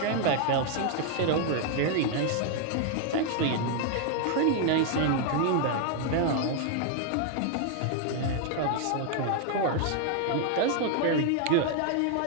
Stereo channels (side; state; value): both; different; correlation 0.00